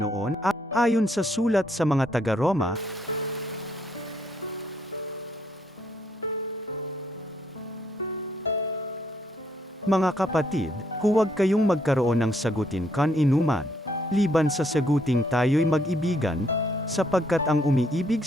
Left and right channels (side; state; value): both; normal; correlation 0.71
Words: ayon sa sulat sa mga taga-Roma, mga kapatid, huwag kayong magkaroon ng sagutin kan-inuman, liban sa saguting tayo'y mag-ibigan, sapagkat ang umiibig